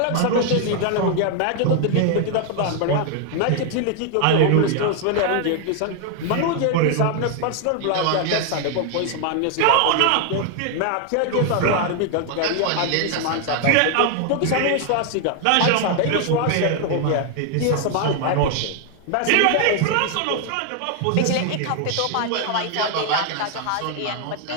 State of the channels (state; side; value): different; both; correlation 0.00